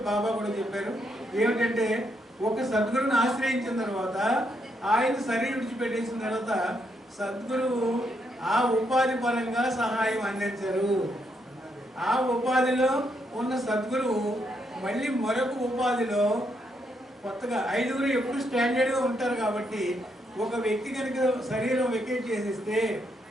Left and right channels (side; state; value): both; normal; correlation 0.77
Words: బాబా కూడా చెప్పారు ఏమిటంటే, ఒక సద్గురుని ఆశ్రయించిన తర్వాత ఆయన శరీరం విడిచిపెట్టేసిన తర్వాత సద్గురువు ఆ ఉపాధి పరంగా సహాయం అందించరు. ఆ ఉపాధిలో ఉన్న సద్గురువు మళ్ళీ మరొక ఉపాధిలో కొత్తగా 5 ఎప్పుడు స్టాండర్డ్గా ఉంటారు కాబట్టి ఒక వ్యక్తి కనుక శరీరం వెకేట్ చేసేస్తే